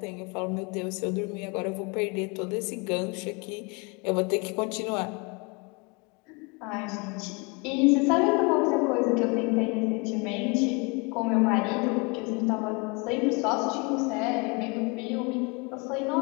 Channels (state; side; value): quieter; right; 30.1 dB